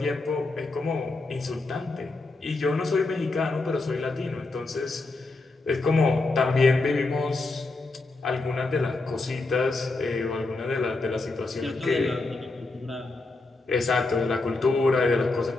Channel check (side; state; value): right; quieter; 3.3 dB